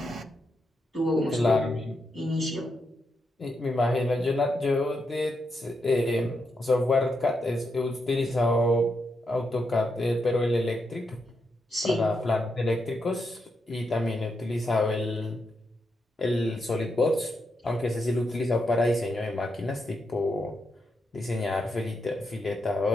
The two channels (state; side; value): normal; both; correlation 0.83